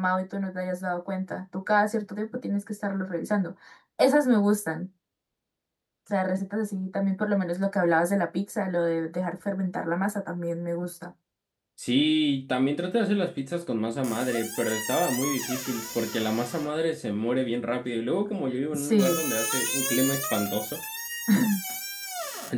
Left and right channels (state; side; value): identical; both; correlation 1.00